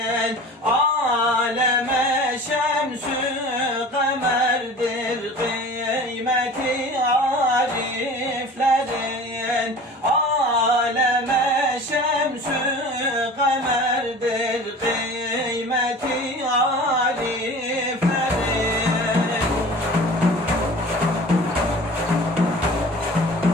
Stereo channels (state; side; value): normal; both; correlation 0.41